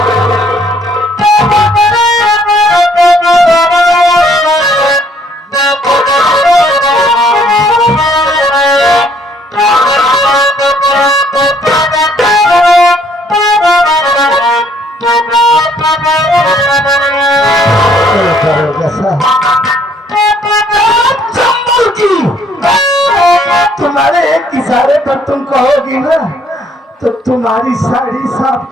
तुम्हारे एक इशारे पर तुम कहोगी ना, तो तुम्हारी साड़ी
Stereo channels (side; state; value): both; normal; correlation 0.64